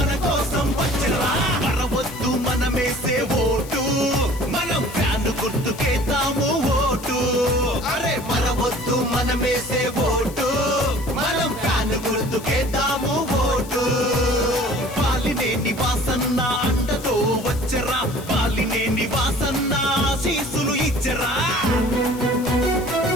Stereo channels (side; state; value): left; noise; hiss, 17 dB below the sound